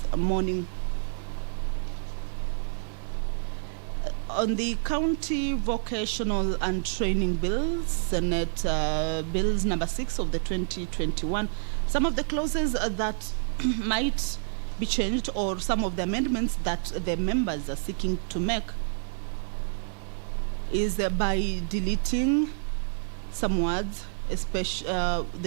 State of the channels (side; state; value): left; silent; digital silence